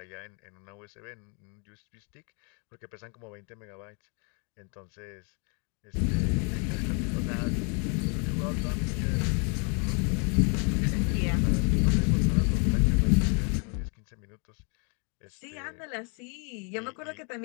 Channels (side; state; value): right; quieter; 37.2 dB